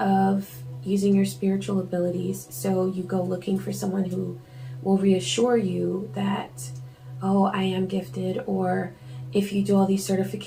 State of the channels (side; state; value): both; identical; correlation 1.00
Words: using your spiritual abilities, so you go looking for someone who will reassure you that, oh, I am gifted, or if you do all these